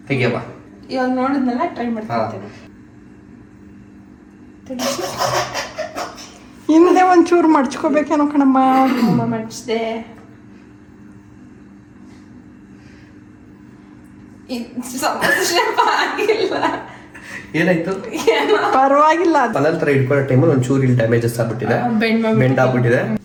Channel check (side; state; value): both; identical; correlation 1.00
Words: ತೆಗಿಯವಾ? ಇವಾಗ ನೋಡಿದ್ನಲ್ಲ, ಟ್ರೈ ಮಾಡ್ತೀನಿ. ಹಿಂದೆ ಒಂಚೂರು ಮಡ್ಚ್ಕೋಬೇಕೇನೋ ಕಣಮ್ಮ. ಮಡ್ಚಿದೆ. ಏನಾಯ್ತು? ಪರವಾಗಿಲ್ಲ. ನಂತರ ಇಟ್ಕೊಳ್ಳೋ ಟೈಮಲ್ಲಿ ಒಂಚೂರು ಇಲ್ಲಿ ಡ್ಯಾಮೇಜಸ್ ಆಗ್ಬಿಟ್ಟಿದೆ, ಬೆಂಡ್ ಆಗ್ಬಿಟ್ಟಿದೆ.